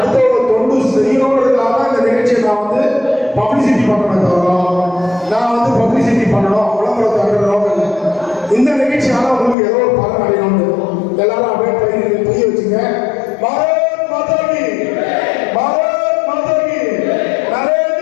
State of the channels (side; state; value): right; drops out; at 9.6 s